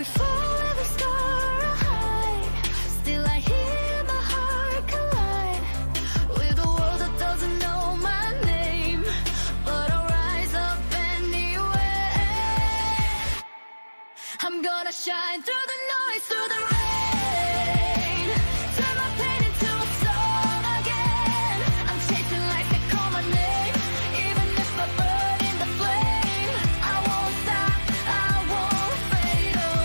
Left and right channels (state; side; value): inverted; both; correlation -1.00